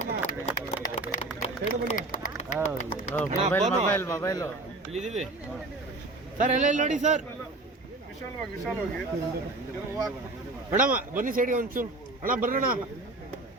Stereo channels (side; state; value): left; quieter; 3.1 dB